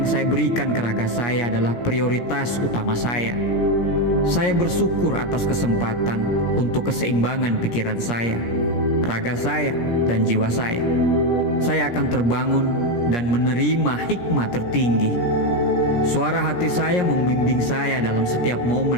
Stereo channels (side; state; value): right; late; 17 ms